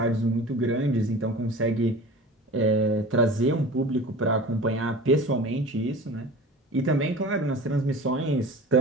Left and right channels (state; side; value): normal; both; correlation 0.38